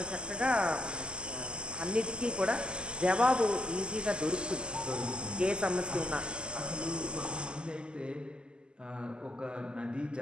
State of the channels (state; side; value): late; left; 0.048 ms